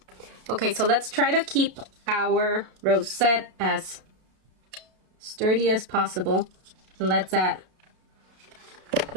Okay, so let's try to keep our rosette as sturdy as possible. And let's add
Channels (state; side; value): late; left; 32 ms